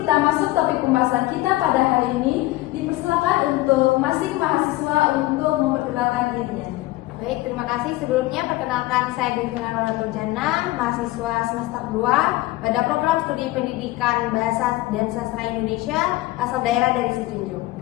masuk topik pembahasan kita pada hari ini, dipersilakan untuk masing mahasiswa untuk memperkenalkan dirinya. Baik, terima kasih. Sebelumnya perkenalkan saya Devina Nurjana, mahasiswa semester 2 pada program studi pendidikan bahasa dan sastra Indonesia asal daerah dari Sijunjung.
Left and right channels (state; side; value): quieter; right; 18.6 dB